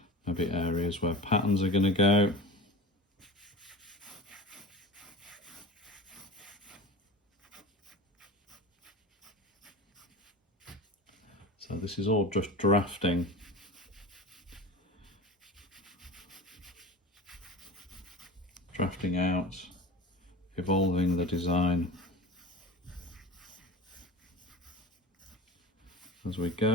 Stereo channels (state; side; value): normal; both; correlation 0.33